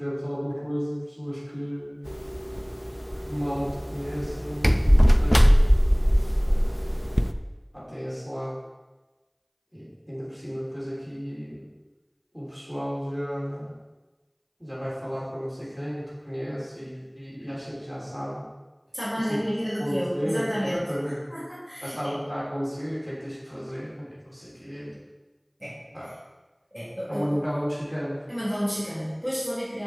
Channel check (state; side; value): identical; both; correlation 1.00